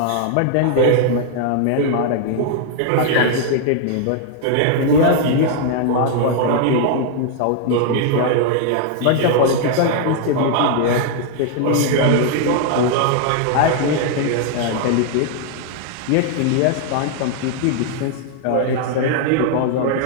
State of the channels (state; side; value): different; both; correlation 0.00